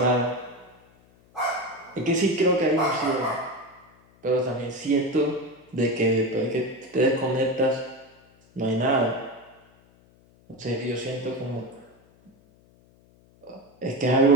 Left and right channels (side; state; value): left; noise; hum, 30 dB below the sound